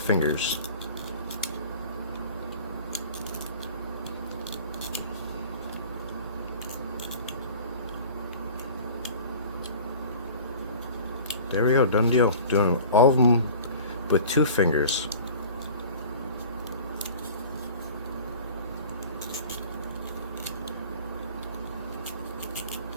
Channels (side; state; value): both; inverted; correlation -0.43